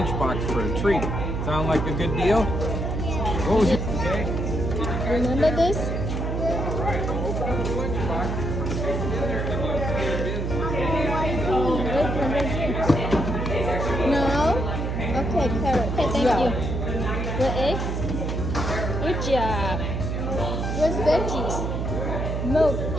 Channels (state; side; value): noise; right; hum, 2 dB below the sound